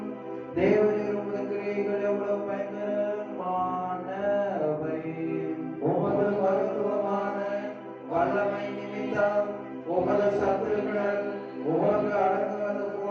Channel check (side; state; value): both; identical; correlation 1.00